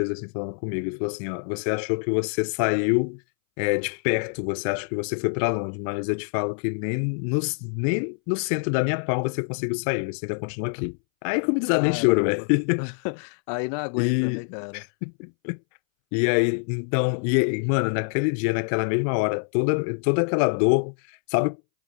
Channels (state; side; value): silent; right; 62 dB below the other